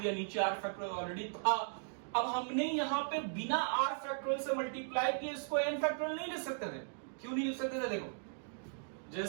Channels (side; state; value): left; silent; digital silence